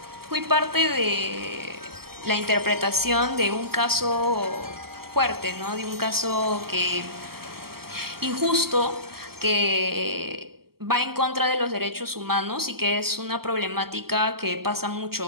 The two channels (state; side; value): late; left; 0.95 ms